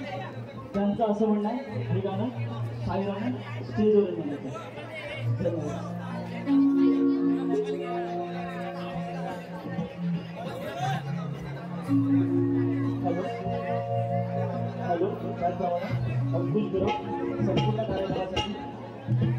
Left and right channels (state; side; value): identical; both; correlation 1.00